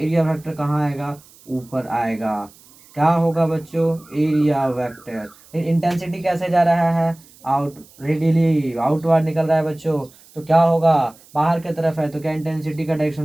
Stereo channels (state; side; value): noise; right; hiss, 26 dB below the sound